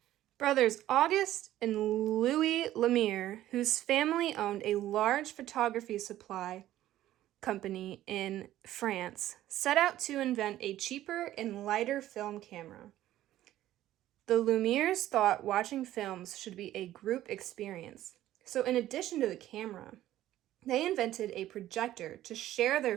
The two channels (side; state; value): left; quieter; 13.7 dB